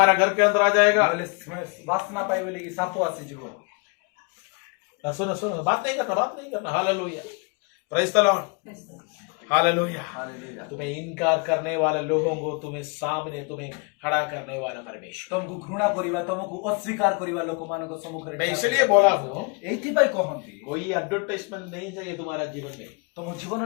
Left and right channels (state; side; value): quieter; right; 33.7 dB